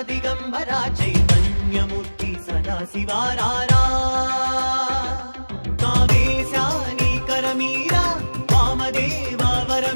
दिगंबरा चैतन्यमूर्ति सदाशिवारारा कामेशानी करमीरा वामदेवा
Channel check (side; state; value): both; inverted; correlation -1.00